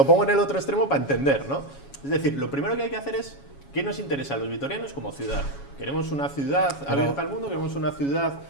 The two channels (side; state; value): right; late; 7.2 ms